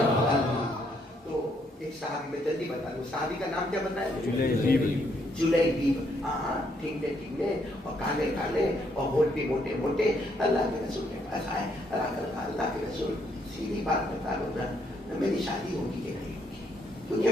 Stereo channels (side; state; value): both; normal; correlation 0.72